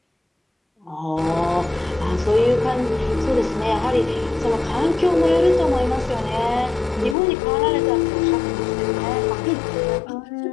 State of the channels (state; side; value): drops out; right; at 7.2 s